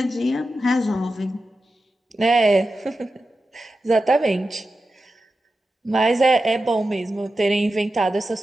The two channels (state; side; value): normal; both; correlation 0.92